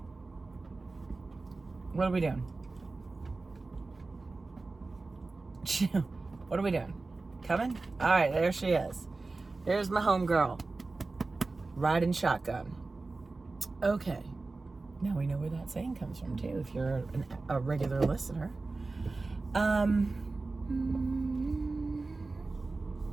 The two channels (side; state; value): left; quieter; 3.6 dB